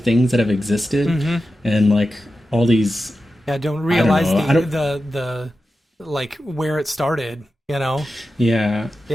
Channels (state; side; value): normal; both; correlation 0.92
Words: that have existed, and like all these. Yeah, don't realize the like where it started. Yeah.